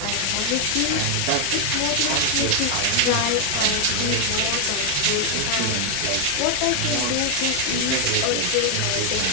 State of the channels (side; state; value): both; different; correlation 0.00